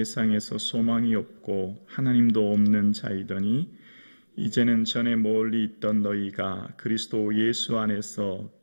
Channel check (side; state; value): both; inverted; correlation -1.00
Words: 소망이 없고 하나님도 없는 자이더니 이제는 전에 멀리 있던 너희가 그리스도 예수 안에서